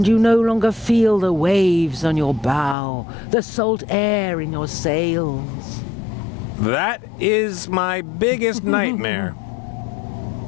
you no longer feel the waves on your bow, the salt air in your sails. That is my biggest nightmare.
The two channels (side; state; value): right; drops out; at 2.8 s